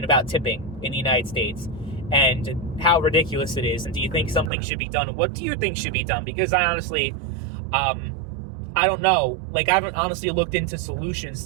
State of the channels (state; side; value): drops out; left; at 4.5 s